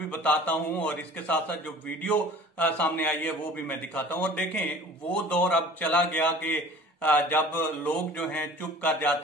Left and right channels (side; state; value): both; normal; correlation 0.46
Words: बताता हूं और इसके साथ साथ जो वीडियो सामने आई है वो भी मैं दिखाता हूं। और देखें, वो दौर अब चला गया कि जब लोग जो हैं चुप कर